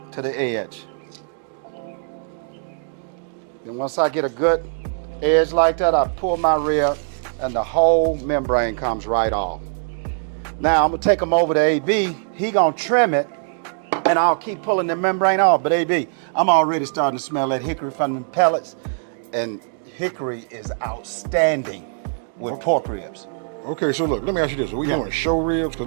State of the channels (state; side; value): silent; left; digital silence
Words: to the edge. Then once I get a good edge like that, I pull my rib, and the whole membrane comes right off. Now I'm gonna take them over to AB. He gonna trim it, and I'll keep pulling the membrane off. But AB, I'm already starting to smell that hickory from the pellets, and hickory is outstanding with pork ribs. Okay, so look, let me ask you this. Are we doing show ribs?